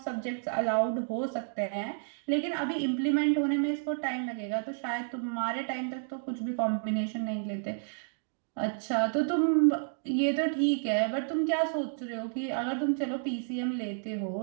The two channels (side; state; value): left; silent; digital silence